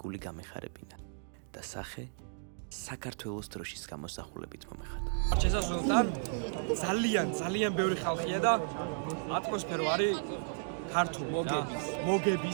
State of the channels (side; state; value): left; silent; digital silence